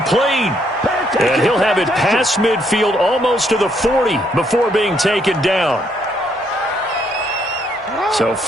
And he'll have it past midfield almost to the 40 before being taken down. So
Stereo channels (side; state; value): both; normal; correlation 0.71